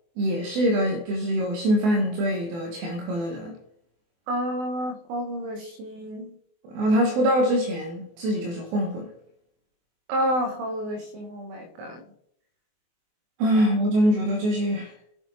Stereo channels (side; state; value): left; late; 24 ms